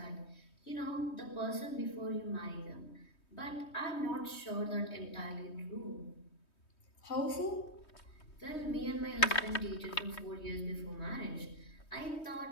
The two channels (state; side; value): late; right; 3.2 ms